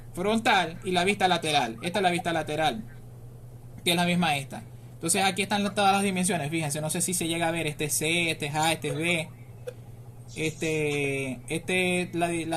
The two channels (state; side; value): identical; both; correlation 1.00